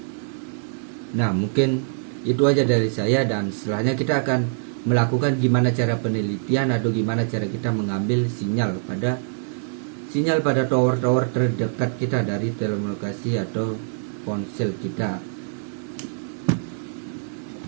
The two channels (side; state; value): left; silent; digital silence